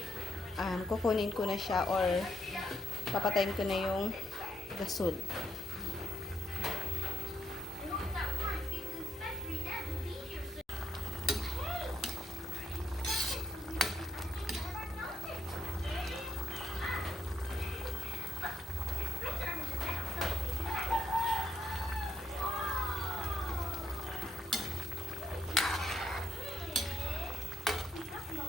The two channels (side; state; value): both; normal; correlation 0.79